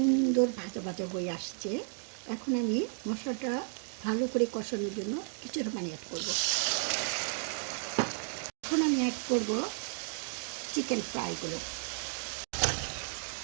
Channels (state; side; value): silent; left; 56 dB below the other